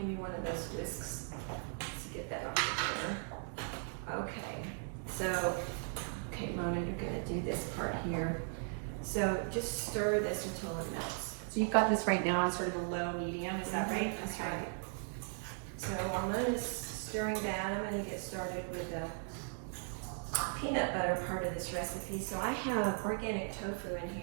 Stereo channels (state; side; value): silent; left; 53 dB below the other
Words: me one of those whisks to get that off the counter. Okay, so, Mona, you're gonna do this part here. So just stir this until it melts. So you've got this right now on sort of a low medium, is that right? That's right. So while Mona's stirring that, I'm gonna get started with the peanut butter part of this recipe. So I have organic tofu in